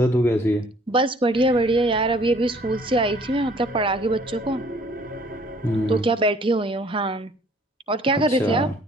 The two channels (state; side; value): normal; both; correlation 0.57